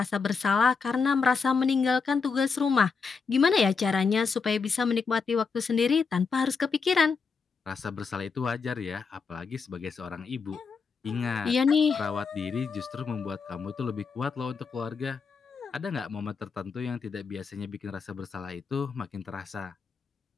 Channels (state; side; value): quieter; right; 5.2 dB